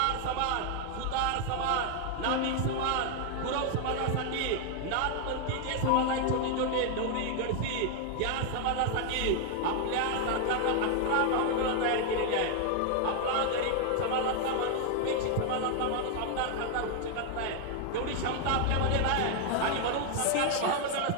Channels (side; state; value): both; different; correlation 0.00